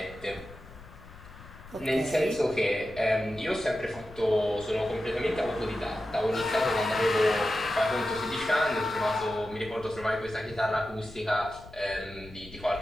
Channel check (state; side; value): noise; left; rumble, 18 dB below the sound